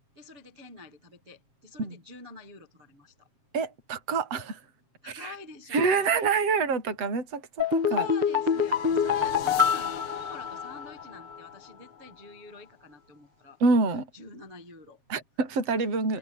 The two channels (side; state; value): left; late; 7.4 ms